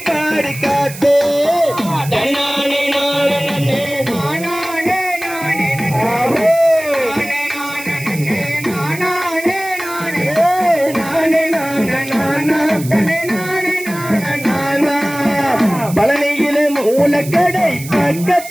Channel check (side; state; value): right; noise; hiss, 13 dB below the sound